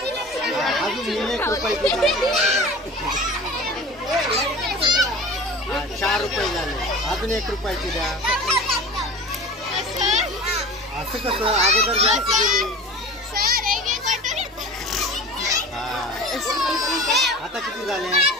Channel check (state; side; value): normal; both; correlation 0.37